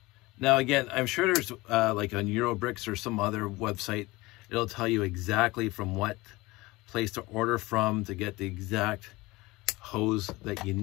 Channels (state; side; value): quieter; right; 21.2 dB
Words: Now again, I'm sure there's like on Eurobricks or some other website, it'll tell you exactly from what place to order from to get the exact hose that you